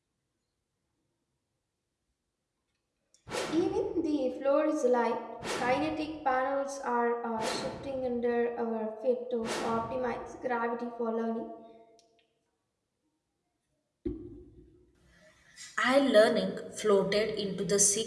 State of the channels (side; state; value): both; identical; correlation 1.00